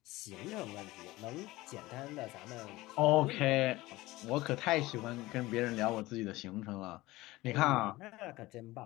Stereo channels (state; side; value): quieter; right; 19.0 dB